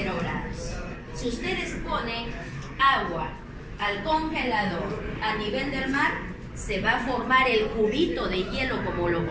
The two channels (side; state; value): both; identical; correlation 1.00